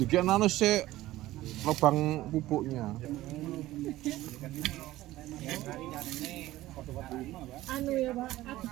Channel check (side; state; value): left; quieter; 16.2 dB